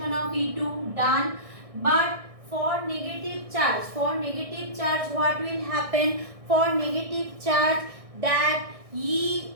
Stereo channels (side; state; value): left; late; 1.6 ms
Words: of E2, done. But for negative charge, what will happen? For negative charge, that E